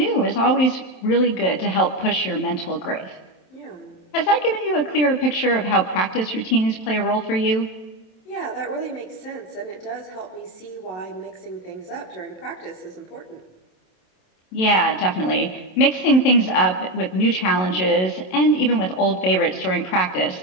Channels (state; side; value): late; right; 27 ms